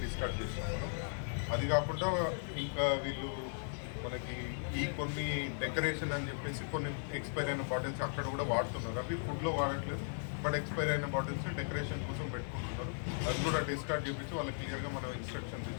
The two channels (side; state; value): right; silent; digital silence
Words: డిస్కార్డ్ చేస్తాం మనం. అది కాకుండా ఇంకా వీళ్ళు మనకి ఈ కొన్ని డెకరేషన్ అని చెప్పేసి కొన్ని ఎక్స్పైర్ అయిన బాటిల్స్ అక్కడ కూడా వాడుతున్నారు. అవి ఫుడ్లో వాడట్లేదు, బట్ ఎక్స్పైర్ అయిన బాటిల్స్ డెకరేషన్ కోసం పెట్టుకుంటున్నారు. అది కూడా డిస్కార్డ్ చేయించి వాళ్ళకి క్లియర్గా మనం ఇన్స్ట్రక్షన్స్